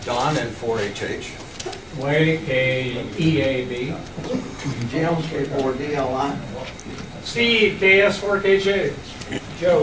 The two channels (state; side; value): identical; both; correlation 1.00